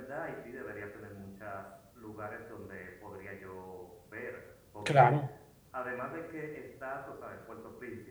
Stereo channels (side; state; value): both; identical; correlation 1.00